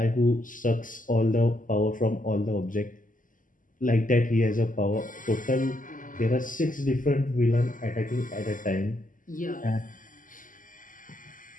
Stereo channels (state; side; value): late; right; 0.38 ms